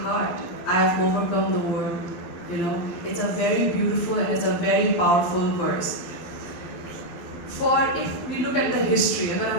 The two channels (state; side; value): late; right; 12 ms